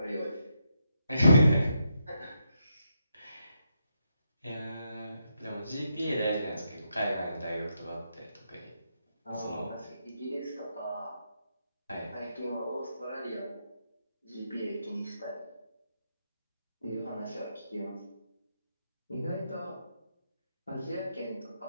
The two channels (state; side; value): inverted; both; correlation -0.82